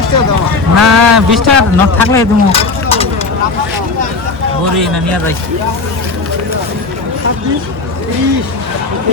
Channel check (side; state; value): right; quieter; 3.9 dB